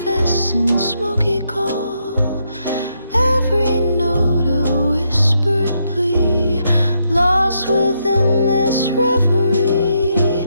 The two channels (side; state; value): both; inverted; correlation -0.79